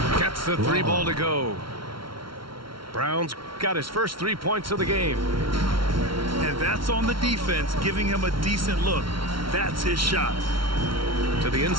Gets the 3 ball to go. Brown's got his first 3 points of the game. And that's on the defense, giving him a decent look. That's his shot. To the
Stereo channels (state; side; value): late; left; 0.74 ms